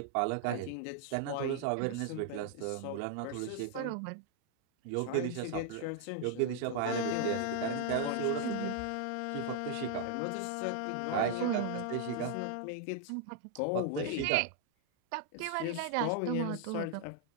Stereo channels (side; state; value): both; different; correlation 0.00